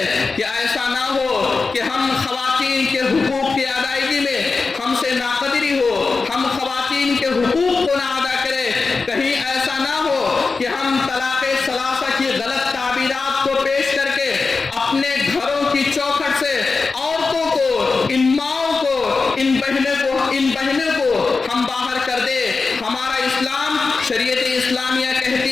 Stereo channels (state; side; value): quieter; right; 4.3 dB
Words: کہ ایسا نہ ہو کہ ہم خواتین کے حقوق کی ادائیگی میں ہم سے ناقدری ہو, ہم خواتین کے حقوق کو نہ ادا کریں. کہیں ایسا نہ ہو کہ ہم طلاق ثلاثہ کی غلط تعبیرات کو پیش کر کے اپنے گھروں کی چوکھٹ سے عورتوں کو, ان ماؤں کو, ان بہنوں کو ہم باہر کر دے. ہمارا اسلام شریعت اسلامیہ